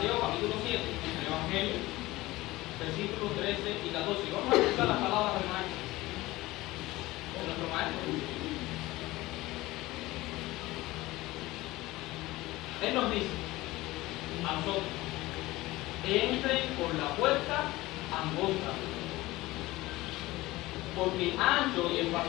capítulo 7, el Evangelio, versículos 13 y 14. Vamos a escuchar las palabras del maestro. De nuestro maestro. Él nos dice a nosotros: entren por la puerta angosta, porque ancho y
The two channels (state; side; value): quieter; right; 18.9 dB